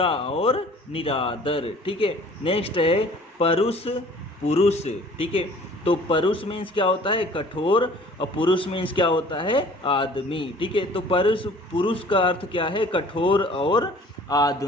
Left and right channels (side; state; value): both; normal; correlation 0.50